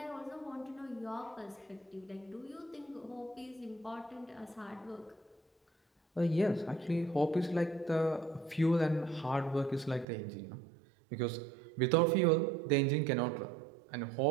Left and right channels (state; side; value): drops out; left; at 10.1 s